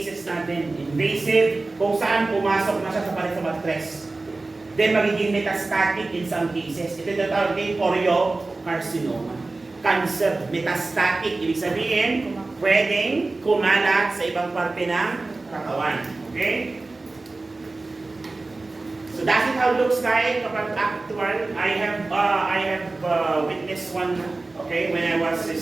natin, invasive, kung saan pumasok na siya sa palit sa matres. Then magiging metastatic in some cases. Ito yung tawag din choriocarcinoma. Cancer, metastatic, ibig sabihin, pwedeng kumalat sa ibang parte ng katawan. Okay? So that's it how it looks like kapag actual. I have witnessed one, okay, when I was a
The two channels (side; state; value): left; quieter; 3.3 dB